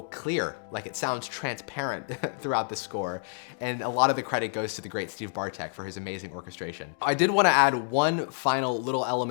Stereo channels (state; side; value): silent; right; digital silence